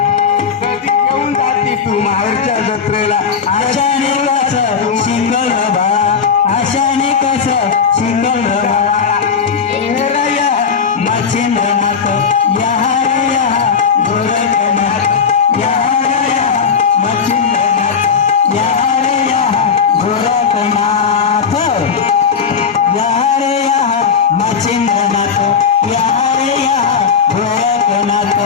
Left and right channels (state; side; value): quieter; right; 6.3 dB